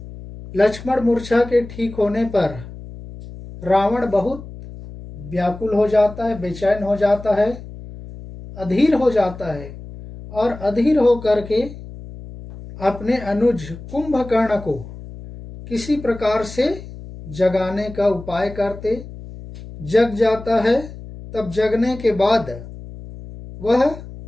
लक्ष्मण मूर्छा के ठीक होने पर रावण बहुत व्याकुल हो जाता है, बेचैन हो जाता है, अधीर हो जाता है और अधीर हो करके अपने अनुज कुंभकर्ण को किसी प्रकार से जगाने का उपाय करते। जग जाता है। तब जगने के बाद वह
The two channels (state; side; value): noise; left; hum, 14 dB below the sound